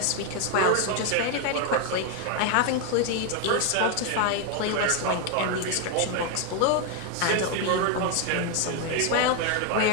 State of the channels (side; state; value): both; different; correlation 0.01